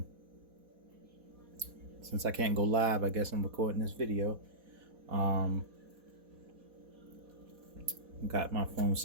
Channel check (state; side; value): late; left; 4.1 ms